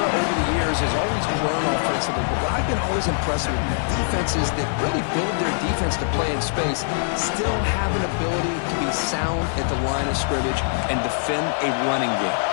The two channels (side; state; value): right; silent; digital silence